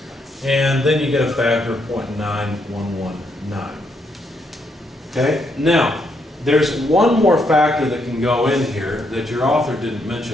and then you get a factor of 0.9119. Okay, now there's one more factor that can go in here that your author didn't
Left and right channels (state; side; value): normal; both; correlation 0.76